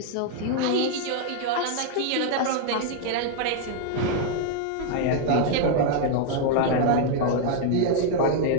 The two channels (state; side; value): different; both; correlation 0.00